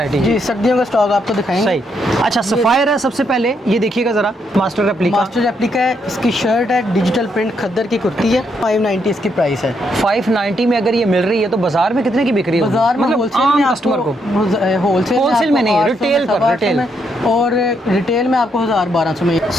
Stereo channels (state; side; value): normal; both; correlation 0.76